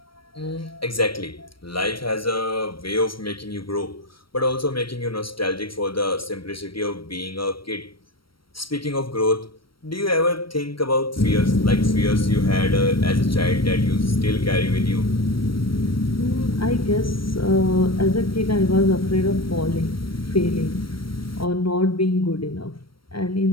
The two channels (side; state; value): right; late; 0.74 ms